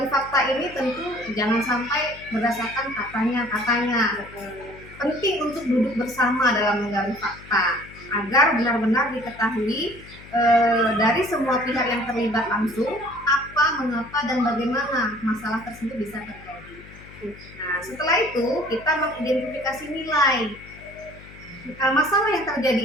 fakta ini tentu jangan sampai berdasarkan katanya. Penting untuk duduk bersama dalam menggali fakta agar benar-benar diketahui dari semua pihak yang terlibat langsung apa, mengapa, dan bagaimana masalah tersebut bisa terjadi. Nah, setelah itu kita mengidentifikasi nilai. Masalah yang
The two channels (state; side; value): noise; left; hum, 19 dB below the sound